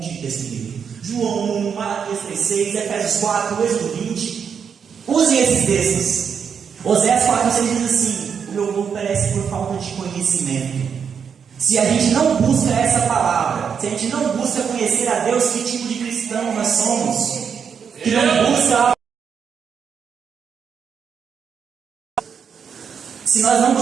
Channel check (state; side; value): quieter; left; 6.9 dB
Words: de texto bíblico. João 1, Malaquias 3:6, Efésios 4, Êxodo 20. Usem esses textos. Oséias 4:6 diz assim: o meu povo perece por falta de conhecimento. Se a gente não busca essa palavra, se a gente não busca conhecer a Deus, que tipo de cristão nós somos? Que não busca. Se nós não